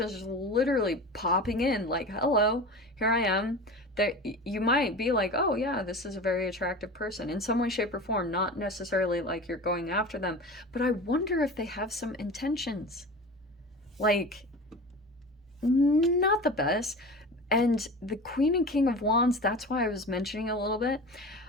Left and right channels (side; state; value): both; normal; correlation 0.33